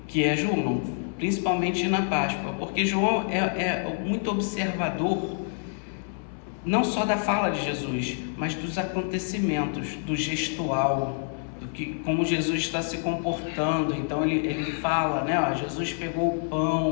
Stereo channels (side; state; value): right; silent; 57 dB below the other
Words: que é João, principalmente na Páscoa, porque João é muito observador, não só da fala de Jesus, mas dos acontecimentos, do gestual, como Jesus está se comportando. Então ele fala, né? Jesus pegou o